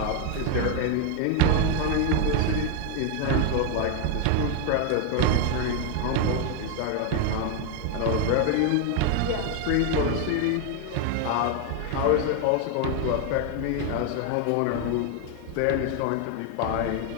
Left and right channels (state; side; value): different; both; correlation 0.01